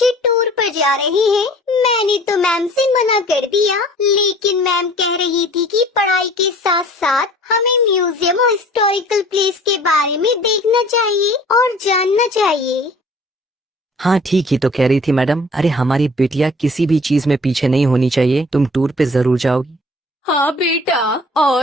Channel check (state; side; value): normal; both; correlation 0.49